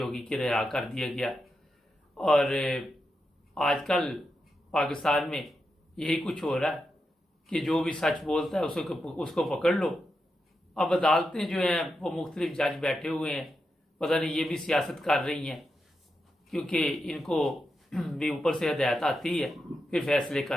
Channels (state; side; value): normal; both; correlation 0.87